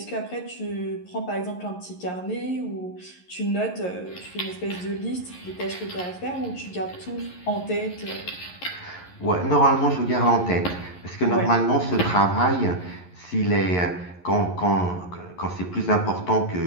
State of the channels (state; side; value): late; right; 11 ms